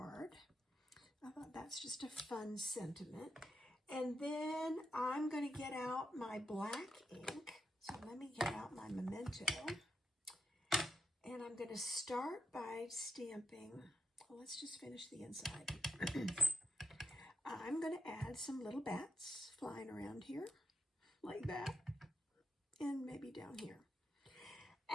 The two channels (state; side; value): normal; both; correlation 0.84